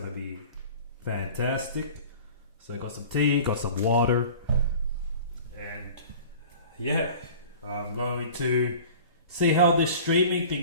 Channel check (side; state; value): both; inverted; correlation -0.42